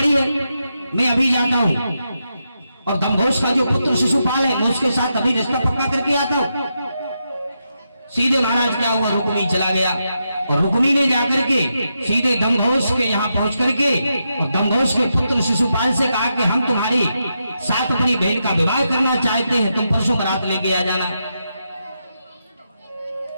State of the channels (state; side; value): inverted; both; correlation -0.85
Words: है, मैं अभी जाता हूं और दमघोष का जो पुत्र शिशुपाल है मैं उसके साथ अभी रिश्ता पक्का करके आता हूं। सीधे महाराज क्या हुआ, रुक्मिणी चला गया और रुक्मिणी ने जाकर के सीधे दमघोष के यहाँ पहुंच करके और दमघोष के पुत्र शिशुपाल से कहा कि हम तुम्हारी साथ अपनी बहन का विवाह करना चाहते हैं, तुम परसों बारात लेके आ जाना।